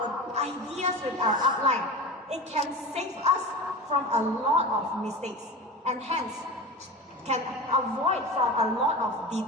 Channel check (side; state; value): both; normal; correlation 0.30